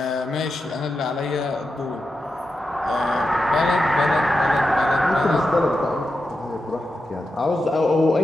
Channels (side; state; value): both; normal; correlation 0.89